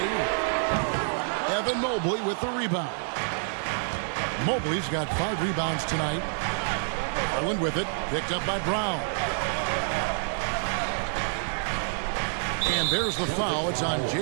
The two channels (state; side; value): silent; left; digital silence